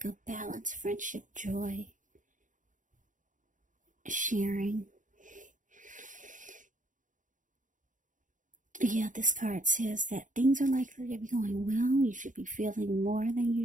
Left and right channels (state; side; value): late; left; 0.37 ms